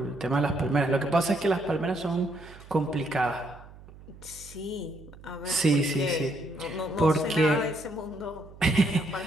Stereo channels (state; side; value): noise; right; hum, 19 dB below the sound